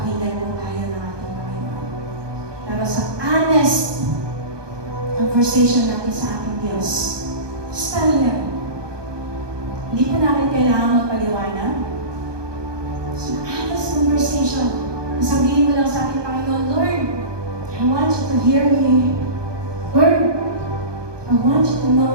po tayo ng ating Panginoon. Pero sa honest conversation natin sa ating Diyos, basta yan. Hindi po natin kailangan magpaliwanag. So, honest conversation. Sabihin mo lang sa ating Panginoon, Lord, I want you to hear me. Lord, I want you to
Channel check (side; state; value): left; late; 1.2 ms